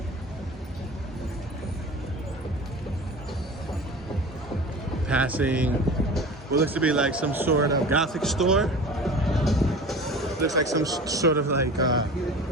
Passing what looks to be like some sort of Gothic store. Looks like some sort of like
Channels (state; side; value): normal; both; correlation 0.37